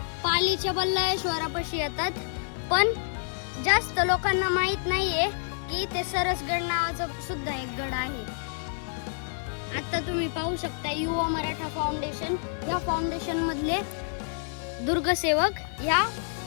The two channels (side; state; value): right; silent; digital silence